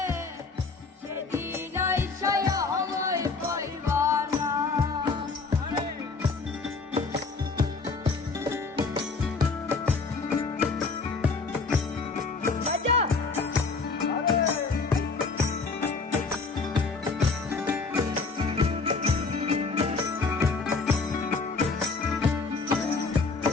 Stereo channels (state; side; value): quieter; right; 4.3 dB